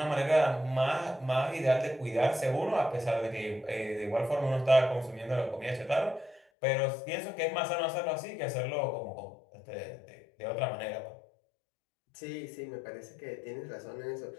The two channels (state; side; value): drops out; right; at 6.4 s